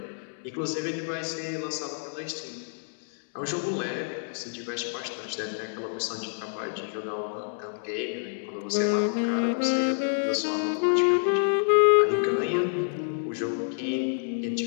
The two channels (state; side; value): silent; right; digital silence